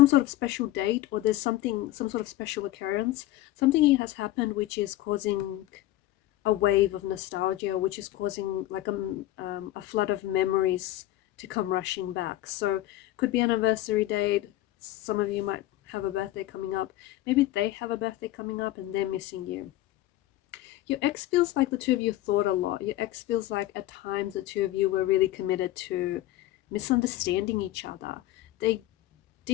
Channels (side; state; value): right; quieter; 15.5 dB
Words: sort of special date, or there's some sort of special occurrence. Something has happened which is causing a wave of nostalgia, which is causing like a flood of memories to come rushing back. So could be an anniversary date. Some of you might have a birthday coming up. Maybe they have a birthday coming up and they're missing you. Your ex feels like the two of you thought a lot. Your ex feels like at times the two of you were really committed to misunderstanding each other. They